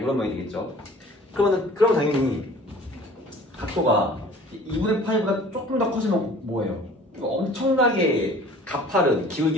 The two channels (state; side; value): normal; both; correlation 0.48